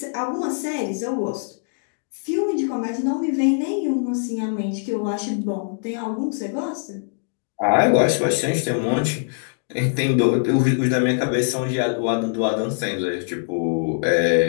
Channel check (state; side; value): silent; right; digital silence